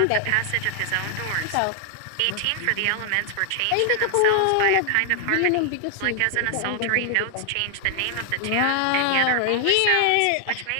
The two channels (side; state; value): both; different; correlation 0.00